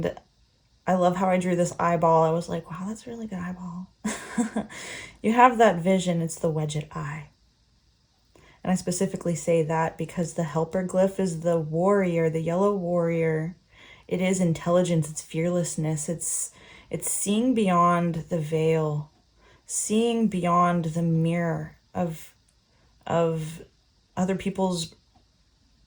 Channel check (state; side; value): identical; both; correlation 1.00